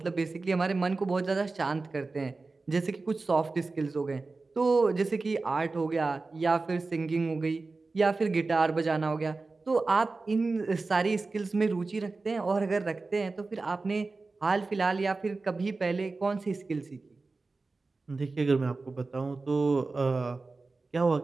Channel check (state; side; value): quieter; left; 3.7 dB